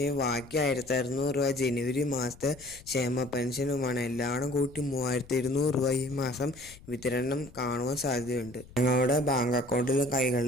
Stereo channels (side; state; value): left; noise; rumble, 21 dB below the sound